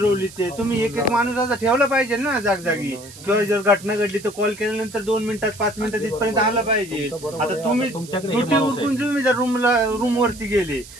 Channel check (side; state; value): right; noise; hiss, 18 dB below the sound